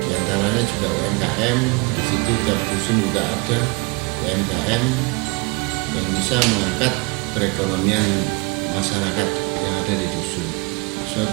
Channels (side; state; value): left; quieter; 29.0 dB